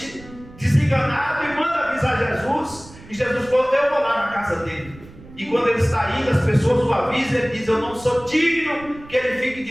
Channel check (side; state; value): right; noise; rumble, 20 dB below the sound